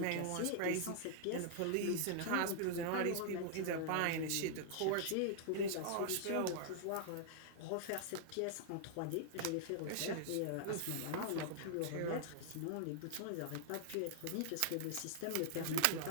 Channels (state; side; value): different; both; correlation -0.01